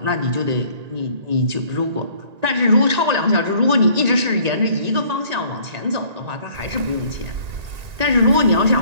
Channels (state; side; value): late; left; 1.9 ms